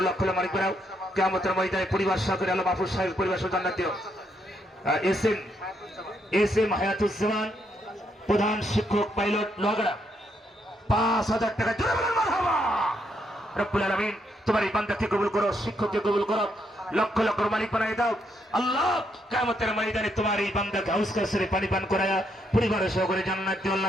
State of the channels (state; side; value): normal; both; correlation 0.76